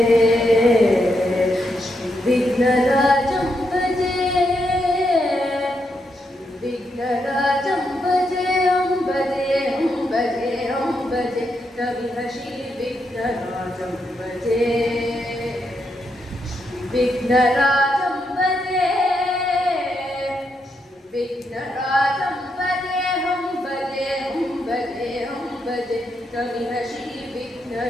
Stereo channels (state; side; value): normal; both; correlation 0.81